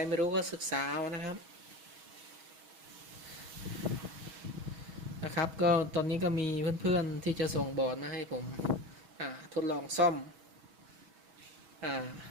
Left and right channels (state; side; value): late; left; 6.3 ms